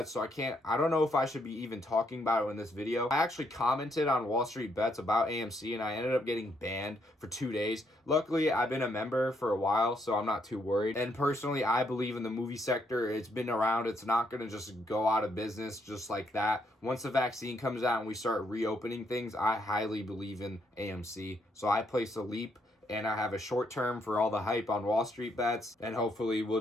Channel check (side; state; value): both; normal; correlation 0.74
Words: so I don't know if I should be even talking about it in this video. I actually commented on Wall Street Bets about AMC, and I ended up getting banned for 2 days. Luckily, I've been a member for a while, so I'm not too worried. And personally, I believe in the movie sector. It's been around. It's not going to just go out of business just like that. Once the vaccine comes out and we start reopening things, I highly believe in AMC. So I placed a leap, and I have a short term for all the hype on Wall Street Bets, and hopefully we'll